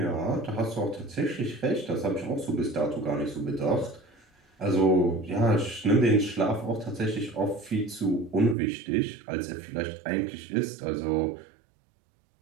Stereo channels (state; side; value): drops out; left; at 8.6 s